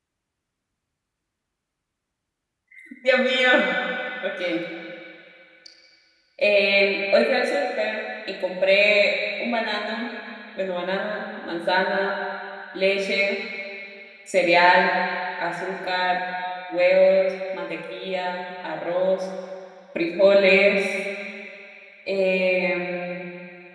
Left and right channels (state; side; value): identical; both; correlation 1.00